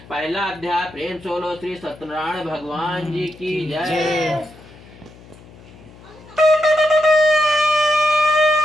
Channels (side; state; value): left; noise; hum, 22 dB below the sound